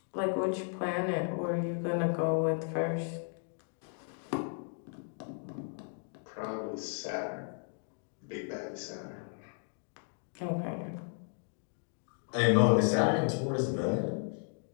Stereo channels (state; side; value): silent; right; 55 dB below the other